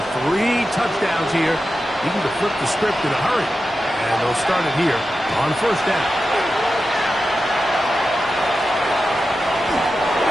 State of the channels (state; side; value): normal; both; correlation 0.91